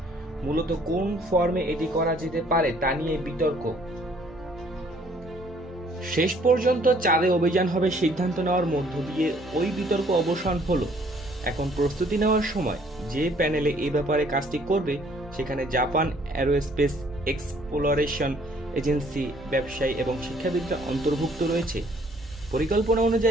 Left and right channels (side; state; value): both; normal; correlation 0.61